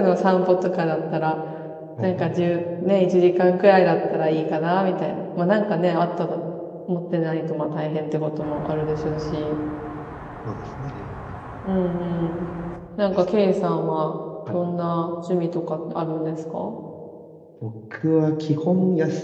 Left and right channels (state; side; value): identical; both; correlation 1.00